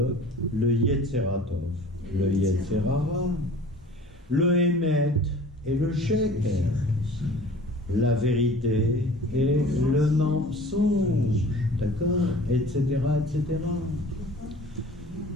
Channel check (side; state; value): both; normal; correlation 0.45